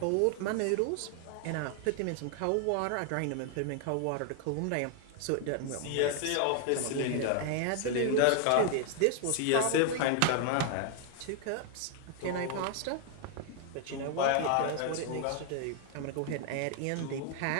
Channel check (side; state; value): both; different; correlation 0.00